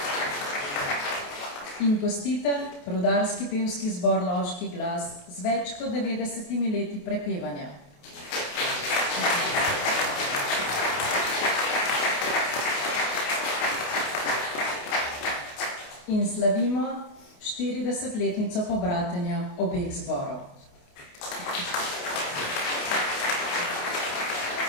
In gostitelj, rudarski pevski zbor Loški glas z več kot 90 leti prepevanja. In slavimo 40-letnico pobratenja obeh zborov.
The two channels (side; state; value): right; late; 28 ms